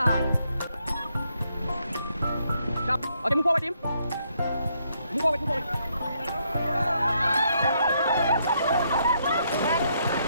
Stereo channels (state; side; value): inverted; both; correlation -0.75